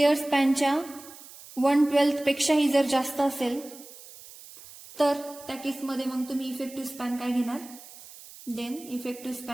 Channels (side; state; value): right; noise; hiss, 18 dB below the sound